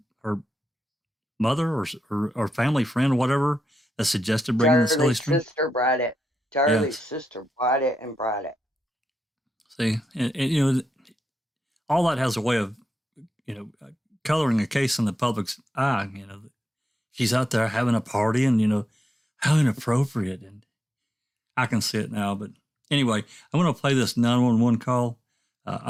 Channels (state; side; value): normal; both; correlation 0.87